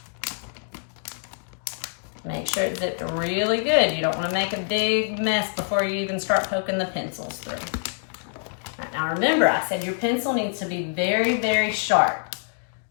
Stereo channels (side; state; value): right; silent; digital silence